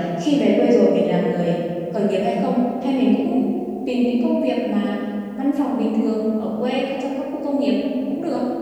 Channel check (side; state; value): both; identical; correlation 1.00